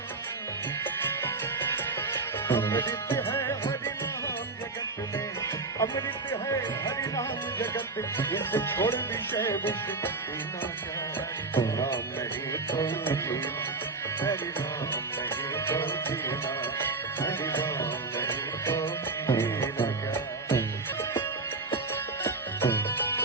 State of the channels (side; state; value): left; quieter; 3.7 dB